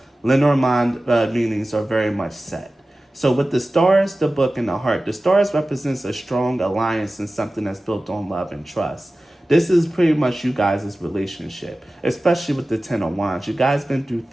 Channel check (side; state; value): both; normal; correlation 0.96